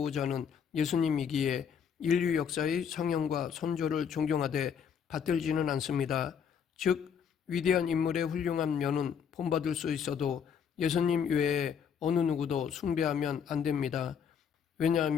예수님이기에 인류 역사의 성형과 선조를 존경하되 받들지는 않습니다. 즉 위대한 인물의 훌륭한 면은 본받을 수 있어도 예수님 외에 어느 누구도 숭배하면 안 됩니다.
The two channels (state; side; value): quieter; right; 7.4 dB